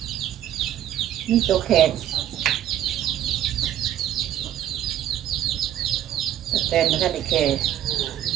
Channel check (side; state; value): left; quieter; 11.6 dB